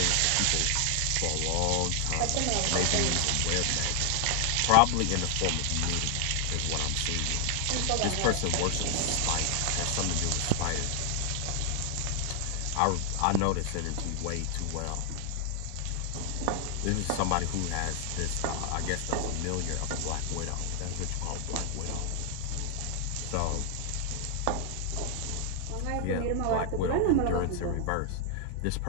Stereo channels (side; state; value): both; different; correlation 0.00